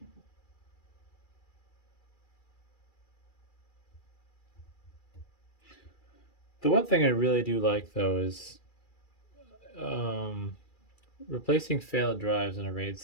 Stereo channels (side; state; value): right; late; 2.3 ms